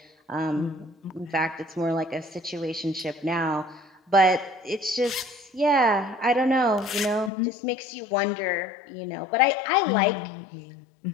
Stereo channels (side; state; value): right; drops out; at 7.3 s